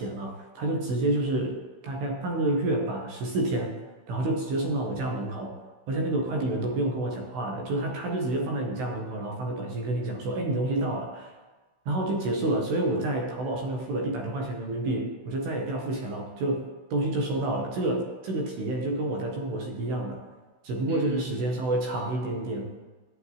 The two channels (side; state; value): left; late; 16 ms